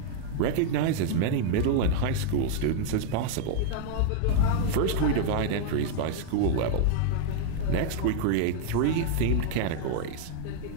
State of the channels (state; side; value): different; both; correlation 0.00